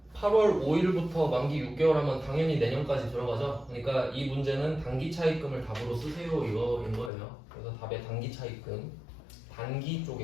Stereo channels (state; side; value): drops out; right; at 7.1 s